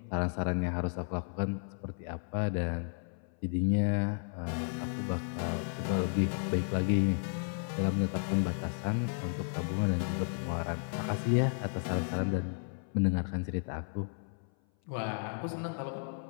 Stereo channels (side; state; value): right; silent; 55 dB below the other